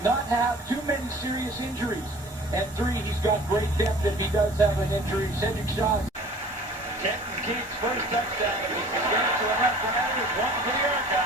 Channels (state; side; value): normal; both; correlation 0.46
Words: not have too many serious injuries. And 3, he's got great depth if he does have an injury. Cedric Shaw. Kenton Keith's first touchdown of the Saskatchewan RoughRiders. 1 for the